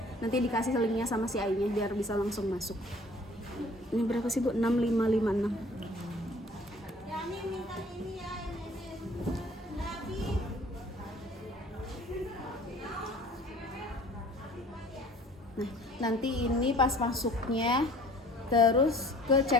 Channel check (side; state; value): both; normal; correlation 0.51